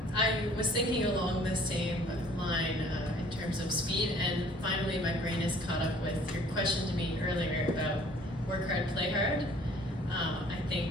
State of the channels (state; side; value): normal; both; correlation 0.54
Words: I was thinking along the same line in terms of speed, and finally my brain is caught up with your question to me earlier about work hard, play hard. I